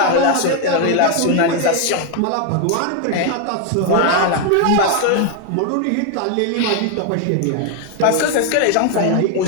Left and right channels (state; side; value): different; both; correlation 0.01